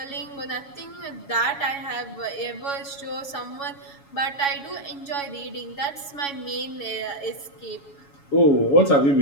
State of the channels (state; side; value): late; right; 7.1 ms